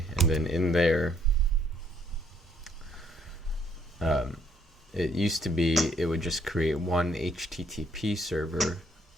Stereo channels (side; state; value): both; normal; correlation 0.67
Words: and then in there, It used to be it would just create one HTTP server.